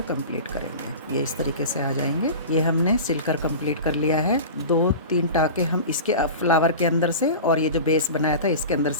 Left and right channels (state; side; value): inverted; both; correlation -0.32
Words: कंप्लीट करेंगे। ये इस तरीके से आ जाएंगे। ये हमने सिलकर कंप्लीट कर लिया है। 2-3 टाके हम इसके फ्लावर के अंदर से और ये जो बेस बनाया था इसके अंदर